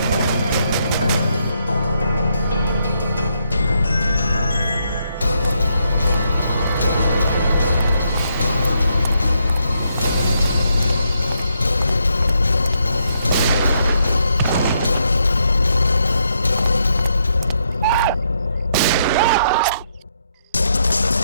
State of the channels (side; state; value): both; inverted; correlation -0.77